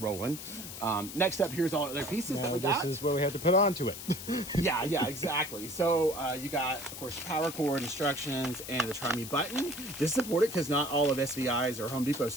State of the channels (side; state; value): left; noise; hiss, 10 dB below the sound